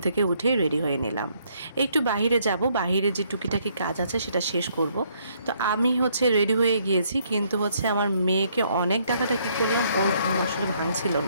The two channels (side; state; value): both; inverted; correlation -0.69